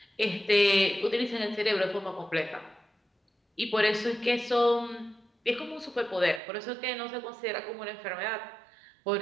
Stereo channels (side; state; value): left; drops out; at 6.4 s